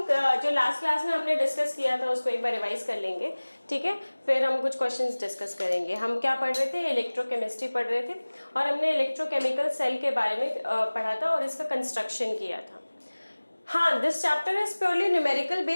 जो लास्ट क्लास में हमने डिस्कस किया था उसको एक बार रिवाइज कर लेंगे, ठीक है। फिर हम कुछ क्वेश्चंस डिस्कस करेंगे। हम क्या पढ़ रहे थे, इलेक्ट्रोकेमिस्ट्री पढ़ रहे थे और हमने इलेक्ट्रोकेमिकल सेल के बारे में पढ़ा था और इसका कंस्ट्रक्शन किया था। हाँ, this chapter is purely numerical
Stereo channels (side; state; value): both; inverted; correlation -1.00